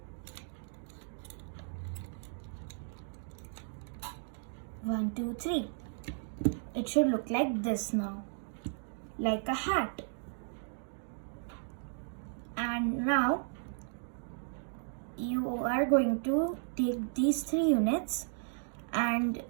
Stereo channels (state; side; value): silent; left; digital silence